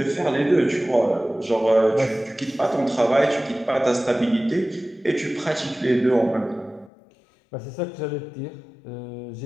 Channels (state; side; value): drops out; right; at 6.9 s